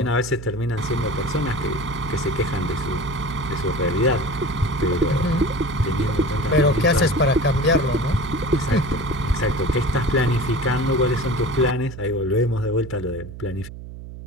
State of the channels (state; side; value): noise; right; hum, 12 dB below the sound